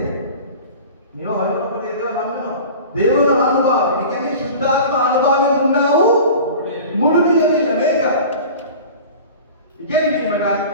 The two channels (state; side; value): inverted; both; correlation -0.38